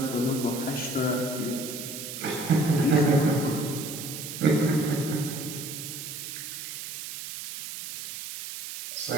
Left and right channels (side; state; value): right; noise; hiss, 8 dB below the sound